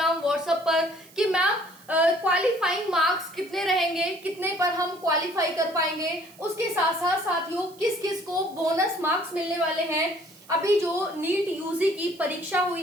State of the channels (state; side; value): noise; right; hiss, 24 dB below the sound